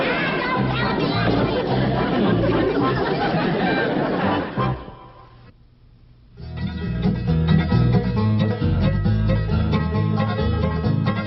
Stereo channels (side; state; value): both; identical; correlation 1.00